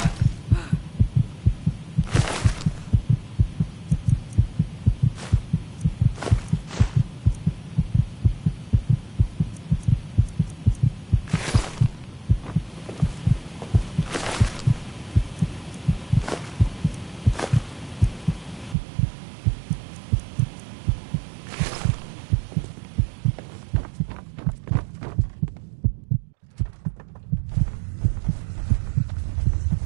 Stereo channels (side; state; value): left; drops out; at 18.8 s